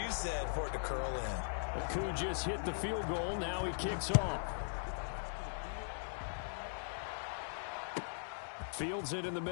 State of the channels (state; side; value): silent; right; digital silence